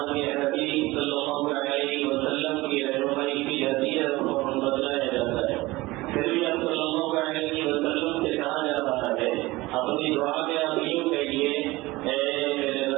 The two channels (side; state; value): left; quieter; 20.1 dB